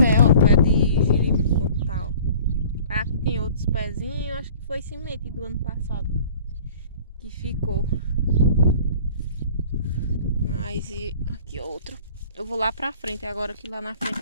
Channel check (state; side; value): inverted; both; correlation -0.48